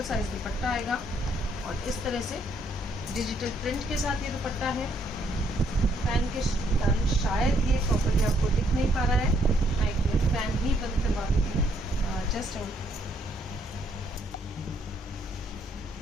साइज दुपट्टा आएगा और इस तरह से डिजिटल प्रिंट के साथ ये दुपट्टा है। फैन के कारण शायद ये प्रॉपर्ली आपको दिख नहीं पा रहा है, मैं एक मिनट फैन ही बंद करवा देती हूँ। जस्ट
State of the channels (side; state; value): both; normal; correlation 0.70